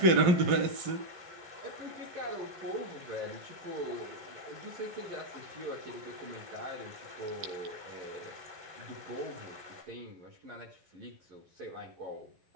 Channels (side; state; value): left; late; 12 ms